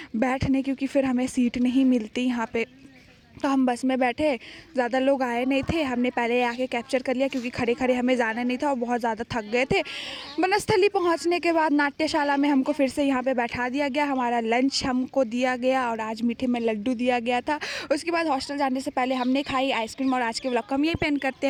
बैठने, क्योंकि फिर हमें सीट नहीं मिलती यहाँ पे। तो हम बस में बैठे, ज़्यादा लोग आए नहीं थे। हमने पहले आके कैप्चर कर लिया क्योंकि खड़े खड़े हमें जाना नहीं था और बहुत ज़्यादा थक गए थे। बनस्थली पहुँचने के बाद नाट्यशाला में हमको फिर से यहाँ पे बैठा दिया गया। हमारा लंच हमको दिया गया और आज मीठे में लड्डू दिया गया था। उसके बाद हॉस्टल जाने से पहले हमने खाई आइसक्रीम। और आज के व्लॉग को हम यही पेन करते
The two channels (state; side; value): identical; both; correlation 1.00